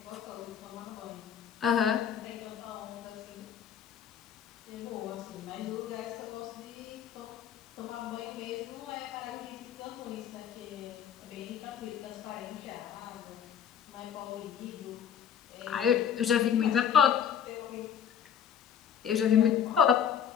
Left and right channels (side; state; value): right; quieter; 8.5 dB